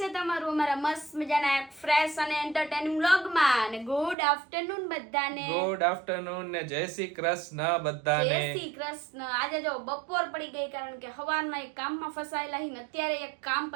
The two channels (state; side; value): drops out; left; at 4.2 s